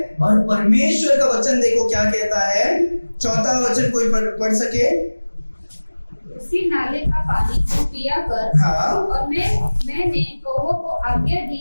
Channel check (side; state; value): both; inverted; correlation -1.00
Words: और परमेश्वर का वचन देखो क्या कहता है, चौथा वचन कोई पढ़ सके। उसी नाले का पानी को पिया कर। हाँ। और मैंने कौवों को आज्ञा दी